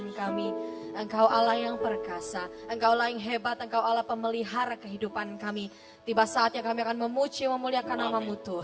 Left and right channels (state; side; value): identical; both; correlation 1.00